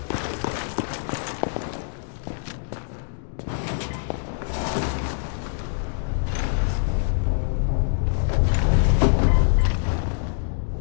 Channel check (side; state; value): right; silent; digital silence